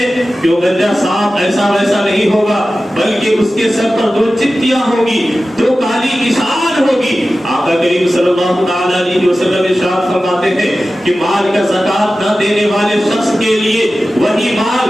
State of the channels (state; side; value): normal; both; correlation 0.95